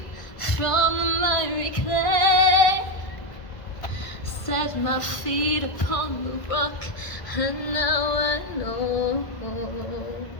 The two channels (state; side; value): late; right; 1.5 ms